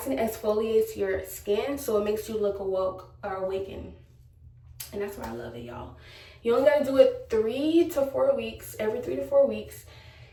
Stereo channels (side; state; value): both; identical; correlation 1.00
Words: your skin, so it makes you look awoke or awakened. And that's why I love it, y'all. You only gotta do it 3 to 4 weeks, every 3 to 4 weeks.